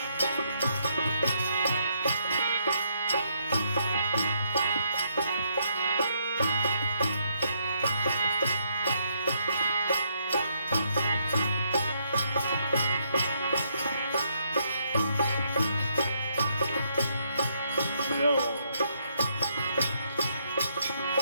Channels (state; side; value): inverted; both; correlation -0.74